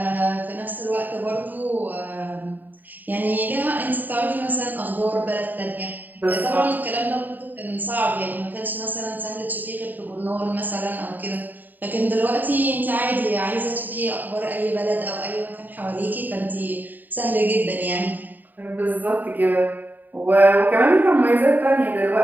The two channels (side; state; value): left; late; 0.087 ms